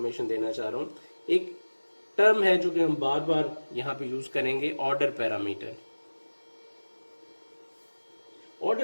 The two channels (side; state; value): both; inverted; correlation -1.00